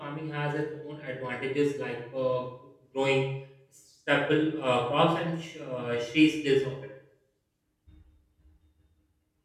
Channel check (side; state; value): both; identical; correlation 1.00